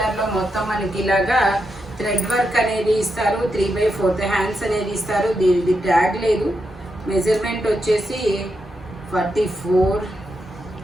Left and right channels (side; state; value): both; normal; correlation 0.84